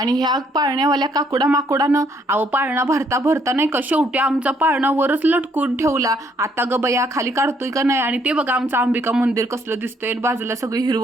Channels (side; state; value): both; normal; correlation 0.68